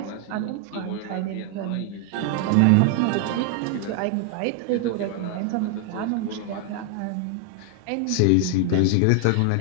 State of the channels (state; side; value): different; both; correlation 0.00